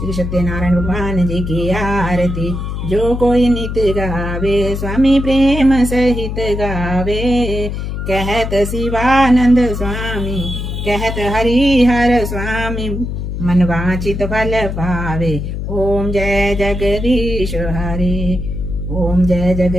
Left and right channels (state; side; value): noise; left; hum, 5 dB below the sound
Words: सत्यनारायण भगवान जी की आरती। जो कोई नित गावे, स्वामी प्रेम सहित गावे। कहत शिवानंद स्वामी, कहत हरिहर स्वामी, मन वांछित फल पावे। ओम जय जगदीश हरे। ओम जय